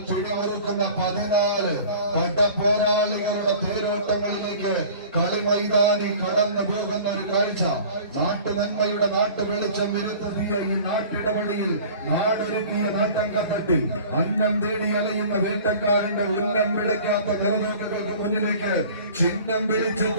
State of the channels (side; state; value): both; inverted; correlation -0.44